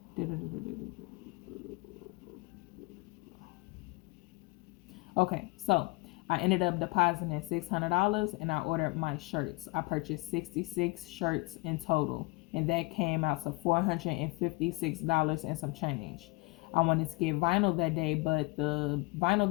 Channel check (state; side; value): quieter; right; 25.6 dB